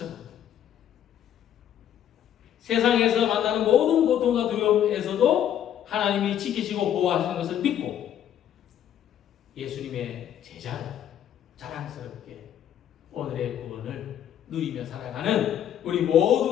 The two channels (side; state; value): right; quieter; 10.3 dB